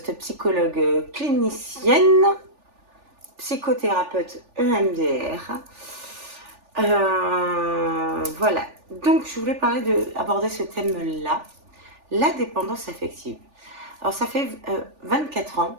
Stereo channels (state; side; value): late; left; 3.4 ms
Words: psychologue clinicienne, psychothérapeute EMDR. Voilà, donc je voulais aborder ce thème-là, la dépendance affective. Alors ça fait 24 ans